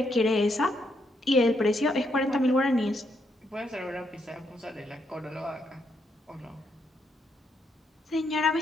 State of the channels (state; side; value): normal; both; correlation 0.77